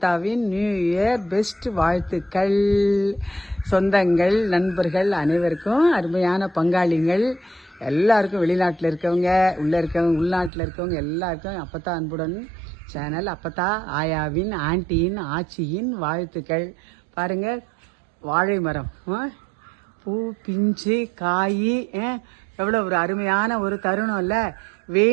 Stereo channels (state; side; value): drops out; left; at 10.5 s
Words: நியூ இயர் பெஸ்ட் வாழ்த்துக்கள். சொந்தங்கள், நண்பர்கள் அனைவருக்கும், அருமையான பங்காளிகள் எல்லாருக்கும், வெளிநாட்டில் இருக்கவங்க, உள்ளே இருக்கவங்க, உள்நாட்டில் இருக்கவங்க எல்லாருக்கும் அப்பத்தா அன்புடன் சேனல், அப்பத்தா ஆயாவின், ஆண்டியின், ஆச்சியின் வாழ்த்துக்கள். பாருங்கள், வாழை மரம் பூ, பிஞ்சு, காய், எவ்வளோ ஒரு அருமையான ஒரு தருணம் இல்லை?